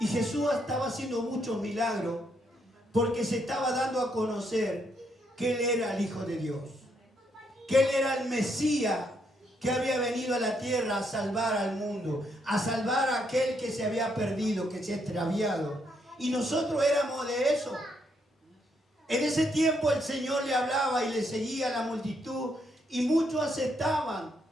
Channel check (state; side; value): normal; both; correlation 0.75